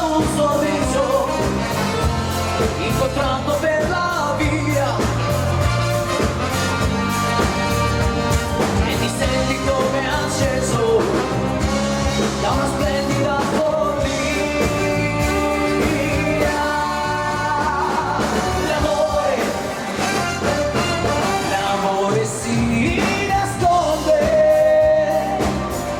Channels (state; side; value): identical; both; correlation 1.00